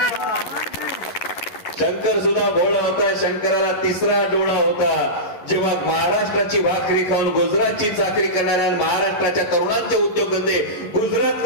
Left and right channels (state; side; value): late; right; 11 ms